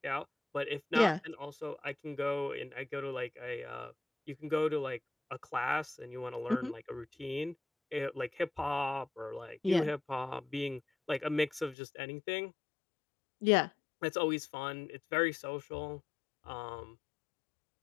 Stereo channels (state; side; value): drops out; right; at 11.8 s